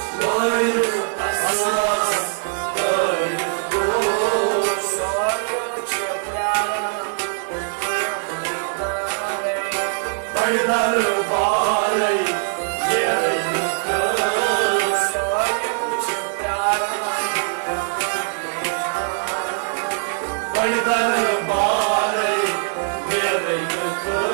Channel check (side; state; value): left; silent; 64 dB below the other